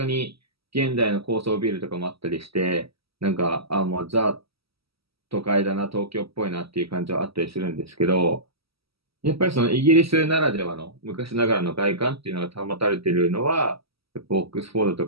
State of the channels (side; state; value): left; late; 0.76 ms